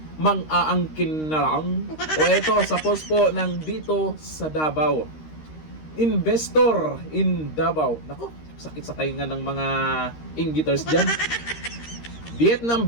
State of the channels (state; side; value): late; right; 13 ms